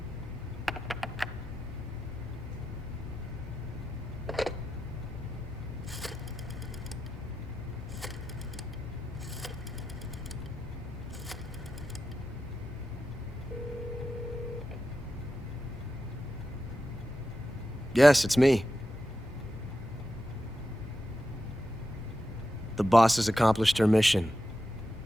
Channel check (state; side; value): normal; both; correlation 0.89